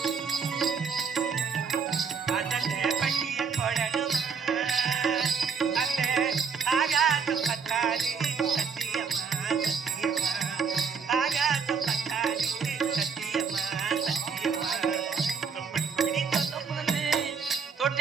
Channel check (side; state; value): left; quieter; 5.8 dB